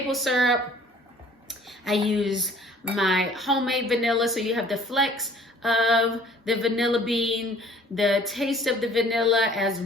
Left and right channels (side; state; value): both; normal; correlation 0.54